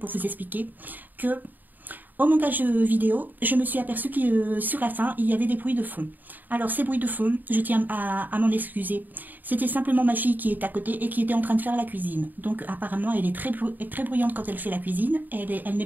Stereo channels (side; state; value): left; late; 0.087 ms